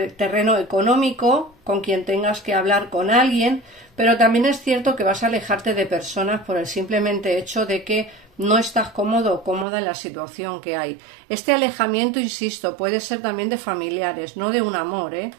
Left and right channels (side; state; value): left; drops out; at 9.7 s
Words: el terreno económico, con quien tengas que hablar con alguien, pero también es cierto que vas a alejarte de personas por el simplemente hecho de que no estás cómodo o cómoda en la situación que hay. Este alejamiento, insisto, puede ser también de familiares, no de un amor, ¿eh?